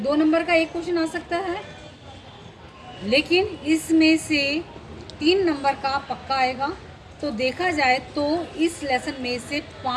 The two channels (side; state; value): both; identical; correlation 1.00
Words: नंबर का 1 क्वेश्चन आ सकता है, लेकिन इसमें से 3 नंबर का पक्का आएगा। तो देखा जाए तो इस लेसन में से